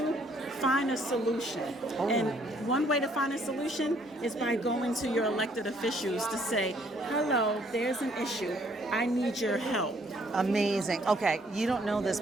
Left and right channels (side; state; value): both; normal; correlation 0.65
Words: find a solution. And one way to find a solution is by going to your elected officials to say, hello, there's an issue. I need your help. Amazing. Okay, you don't know this,